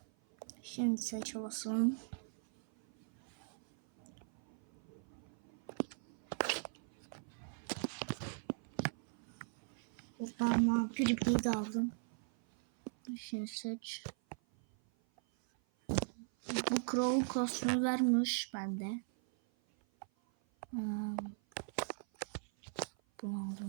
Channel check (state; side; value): silent; left; 51 dB below the other